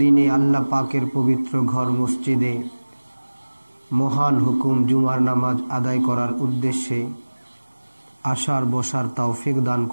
দিনে আল্লাহ পাকের পবিত্র ঘর মসজিদে মহান হুকুম জুমার নামাজ আদায় করার উদ্দেশ্যে আসার বসার তৌফিক দান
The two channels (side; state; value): both; inverted; correlation -1.00